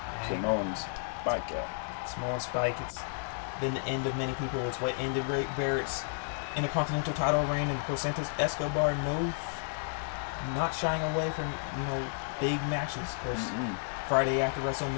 Samoan spike out. Samoan spike. It's been the end of many people. It's what ended Ray Barrett's Intercontinental title reign, and of course Santos Escobar, not shying away from big matches. Of course, Friday after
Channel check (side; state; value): right; silent; digital silence